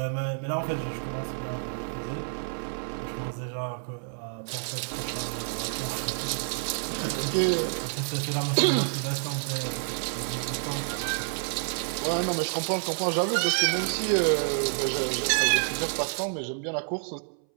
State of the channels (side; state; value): left; silent; 59 dB below the other